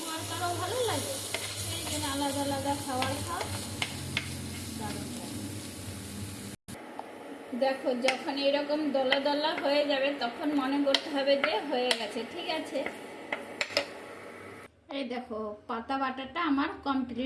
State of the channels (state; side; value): identical; both; correlation 1.00